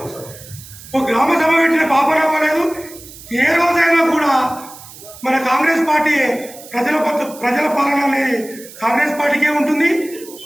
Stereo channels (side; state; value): right; noise; hiss, 18 dB below the sound